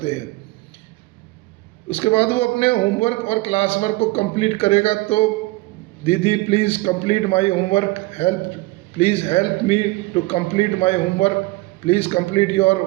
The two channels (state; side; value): quieter; left; 21.4 dB